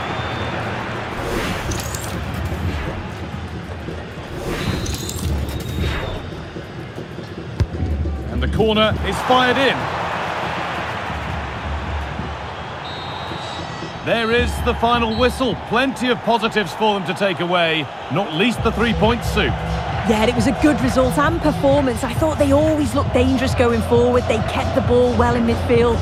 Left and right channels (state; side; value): identical; both; correlation 1.00